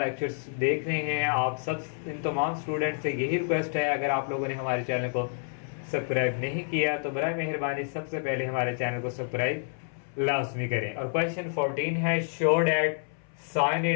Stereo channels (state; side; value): silent; right; 59 dB below the other